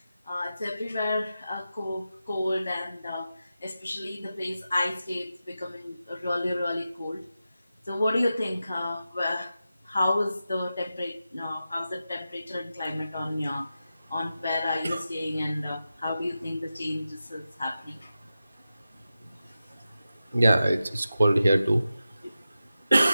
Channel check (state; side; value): inverted; both; correlation -0.92